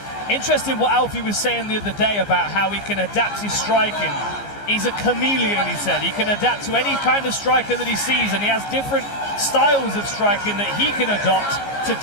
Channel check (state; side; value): late; right; 15 ms